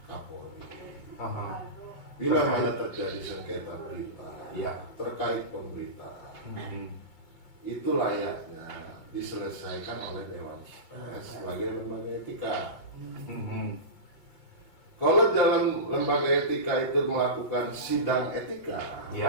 Kapolri. Bila mana terjadi sengketa berita terkait pemberitaan, itu layaknya diselesaikan oleh Dewan Pers sebagai lembaga etika. Kalau dalam lembaga etika itu melakukan sidang etika,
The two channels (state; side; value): late; right; 5.6 ms